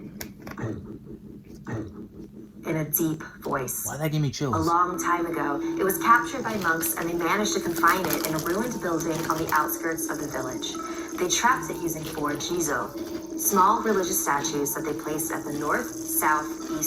in a deep voice. Why that give me chills? A long time ago, it was captured by monks and they managed to confine it in a ruined building on the outskirts of the village. They trapped it using 4 jizo, small religious statues that they placed at the north, south,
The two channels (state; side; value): identical; both; correlation 1.00